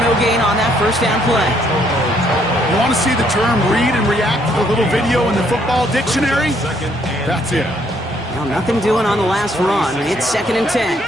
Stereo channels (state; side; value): normal; both; correlation 0.68